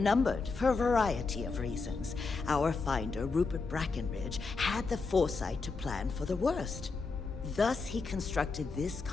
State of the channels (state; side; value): quieter; right; 4.3 dB